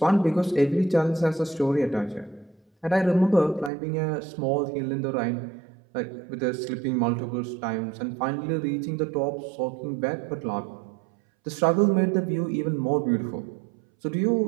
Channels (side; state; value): left; drops out; at 3.7 s